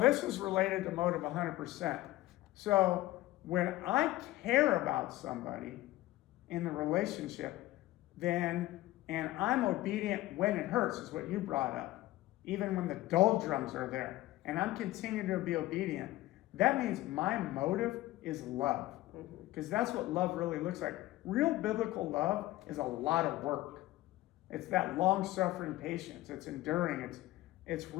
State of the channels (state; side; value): quieter; right; 17.3 dB